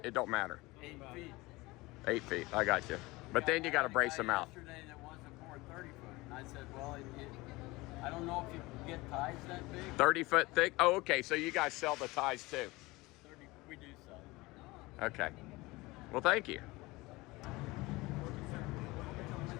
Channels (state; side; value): quieter; right; 21.7 dB